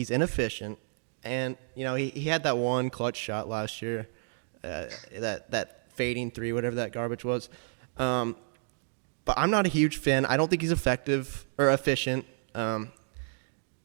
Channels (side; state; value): left; silent; digital silence